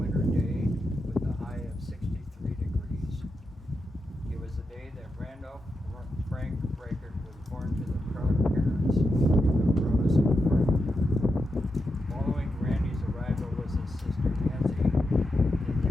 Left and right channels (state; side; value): normal; both; correlation 0.87